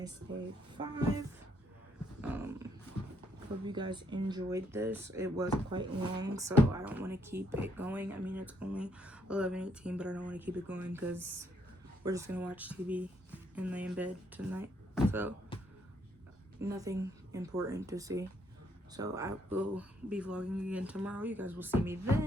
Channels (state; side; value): normal; both; correlation 0.71